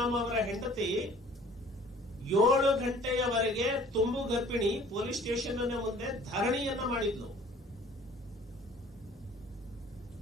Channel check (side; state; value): both; normal; correlation 0.51